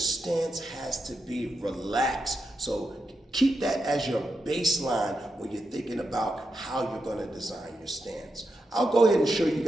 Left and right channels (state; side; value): normal; both; correlation 0.86